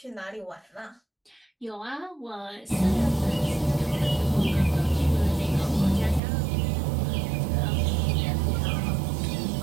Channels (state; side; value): drops out; left; at 6.2 s